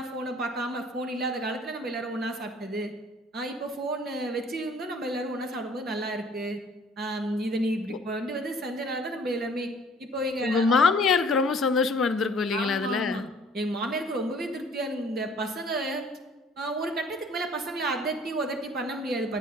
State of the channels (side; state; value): both; normal; correlation 0.54